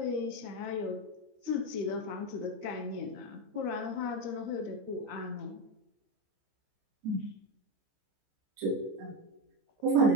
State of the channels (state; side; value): late; left; 14 ms